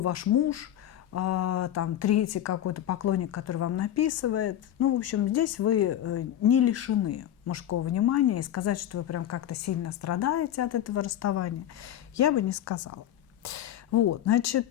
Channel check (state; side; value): quieter; right; 11.4 dB